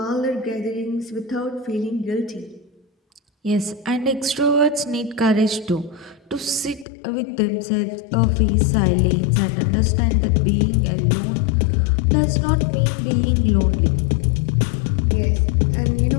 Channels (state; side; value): drops out; right; at 6.9 s